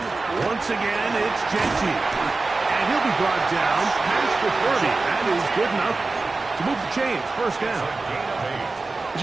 Once again, it's Genty. And he'll be brought down past the 30. That is good enough to move the chains. 1st down. It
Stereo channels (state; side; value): quieter; left; 3.6 dB